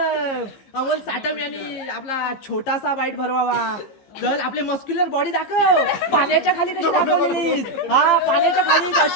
साटम यांनी आपला छोटासा बाईट भरवावा. चल आपली मस्क्युलर बॉडी दाखव. पाण्याच्या खाली कशी दाखवलीस. हा पाण्याच्या खाली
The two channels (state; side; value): late; right; 15 ms